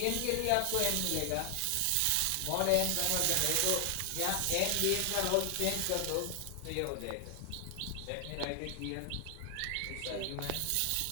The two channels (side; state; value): both; different; correlation 0.00